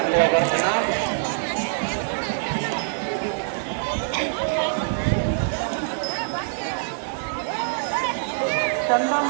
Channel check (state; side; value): silent; left; digital silence